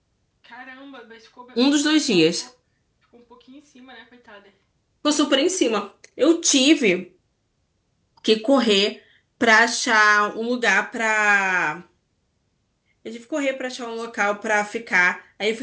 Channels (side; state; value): both; identical; correlation 1.00